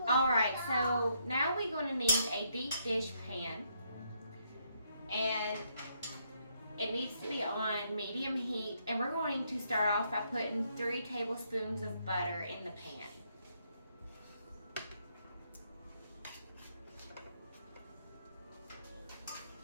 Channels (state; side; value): inverted; both; correlation -0.73